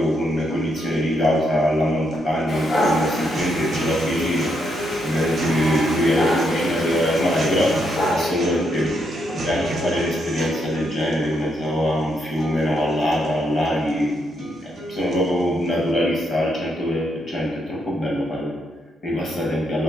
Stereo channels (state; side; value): normal; both; correlation 0.78